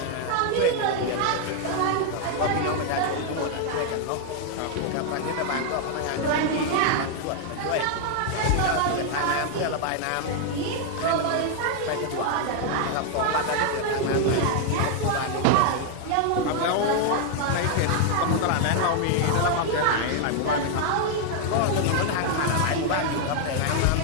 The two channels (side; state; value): both; different; correlation 0.00